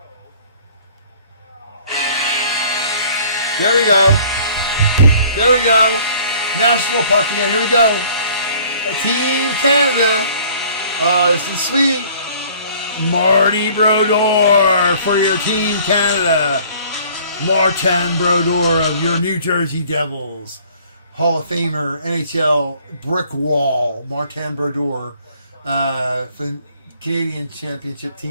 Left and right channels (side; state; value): both; inverted; correlation -0.54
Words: There we go. National puck again. Here we go. Team Canada. This is sweet. Marty Brodeur for your Team Canada. Martin Brodeur of your New Jersey Devils. Hall of Famer, NHL brick wall. Martin Brodeur. For the Canadian Championship